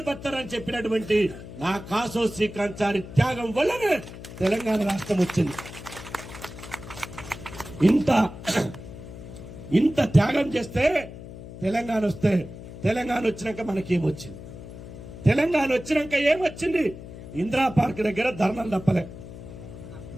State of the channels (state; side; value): noise; left; hum, 13 dB below the sound